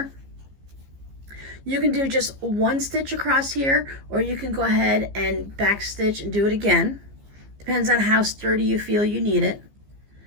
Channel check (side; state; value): left; late; 15 ms